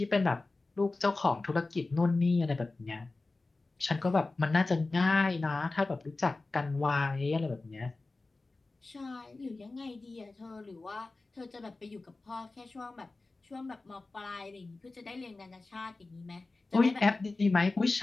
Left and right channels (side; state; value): right; quieter; 3.4 dB